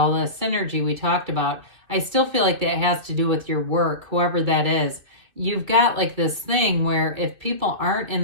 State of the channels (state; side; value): late; left; 2.6 ms